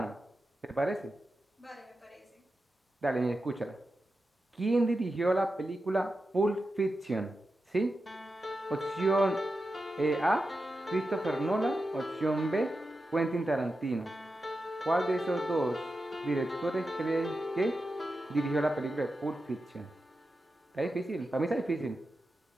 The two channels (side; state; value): both; normal; correlation 0.91